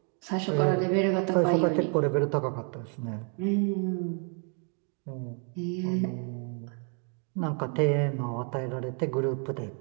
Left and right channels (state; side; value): quieter; left; 39.9 dB